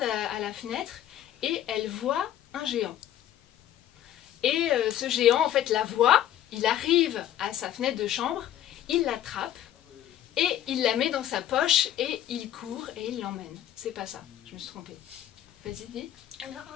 à la fenêtre et elle voit un géant. Et ce géant, en fait, la voit, il arrive à sa fenêtre de chambre, il l'attrape et il la met dans sa poche et il court et il l'emmène. C'est pas ça, je me suis trompée. Vas-y, dis. Alors,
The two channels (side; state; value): right; quieter; 11.7 dB